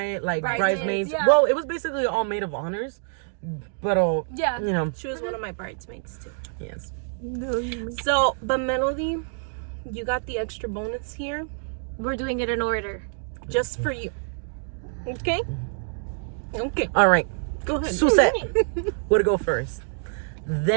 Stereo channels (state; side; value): silent; left; 61 dB below the other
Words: like bridesmaids. Yeah. Well, it was basically all maid of honors, but Yeah. you know, She was one of my bridesmaids too. yes. So, but Melody, you got the extra bonus here We're doing it in order. just for you. Okay? Okay. All right, Go ahead. Susette would go first.